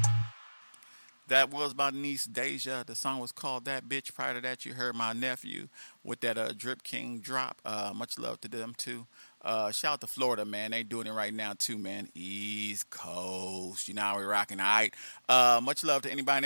That was my niece Deja. The song was called That Bitch. Prior to that, you heard my nephew with that Drip King drop. Much love to them too. Shout out to Florida, man. They doing it right now too, man. East Coast. You know how we rocking, all right? Much love to anybody and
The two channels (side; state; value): both; inverted; correlation -1.00